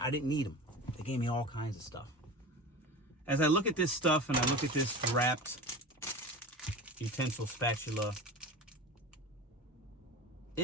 didn't need them. They gave me all kinds of stuff. As I look at this stuff and I look at this wrapped utensil spatula,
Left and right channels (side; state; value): both; normal; correlation 0.31